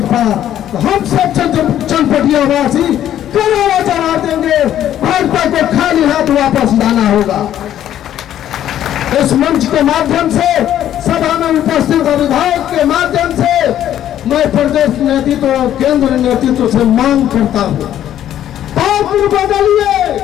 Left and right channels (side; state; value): right; quieter; 11.4 dB